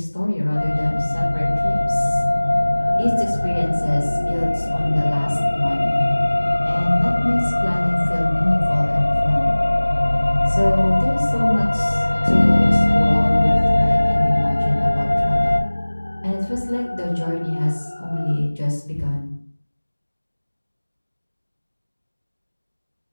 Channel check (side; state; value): both; inverted; correlation -1.00